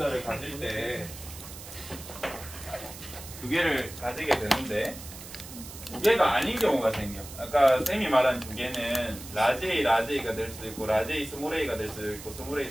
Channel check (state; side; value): noise; right; hiss, 14 dB below the sound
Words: 가질 때 2개를 가지게 되는데 2개가 아닌 경우가 생겨. 아까 쌤이 말한 2개는 라지 A, 라지 A가 될 수도 있고 라지 A, 스몰 A가 될 수도 있고 스몰 A,